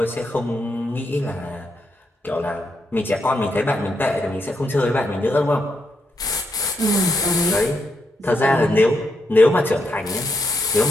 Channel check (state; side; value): normal; both; correlation 0.81